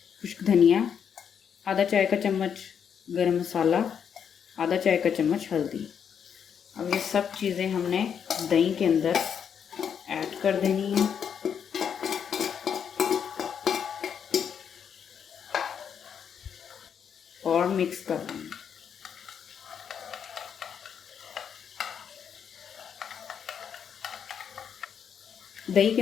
धनिया, आधा चाय का चम्मच गरम मसाला, आधा चाय का चम्मच हल्दी। अब ये सब चीज़ें हमने दही के अंदर ऐड कर देनी है। और मिक्स कर देंगे। दही के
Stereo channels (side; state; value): right; quieter; 7.7 dB